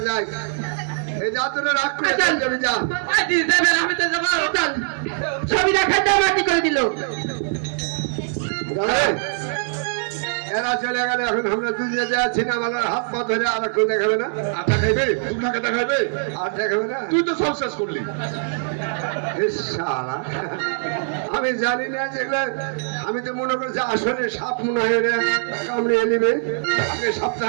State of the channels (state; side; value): silent; left; 64 dB below the other